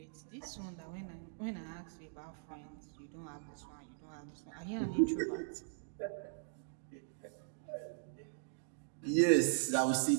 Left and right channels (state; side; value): silent; left; digital silence